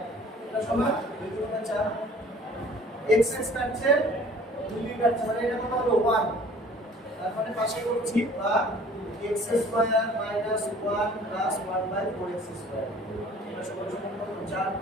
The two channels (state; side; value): normal; both; correlation 0.51